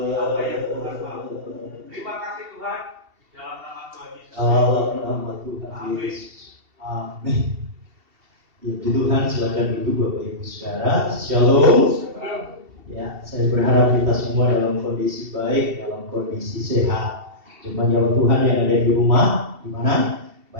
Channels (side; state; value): left; late; 2.7 ms